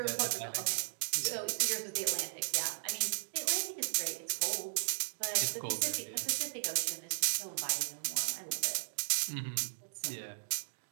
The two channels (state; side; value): silent; left; digital silence